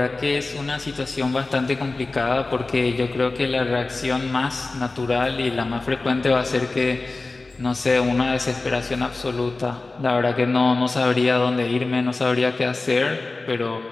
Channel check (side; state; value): right; quieter; 3.4 dB